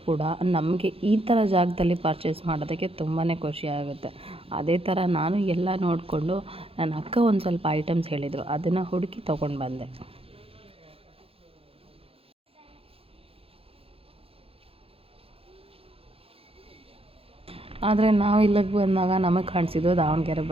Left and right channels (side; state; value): left; late; 0.27 ms